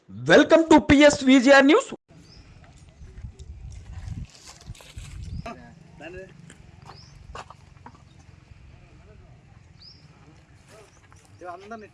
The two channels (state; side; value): identical; both; correlation 1.00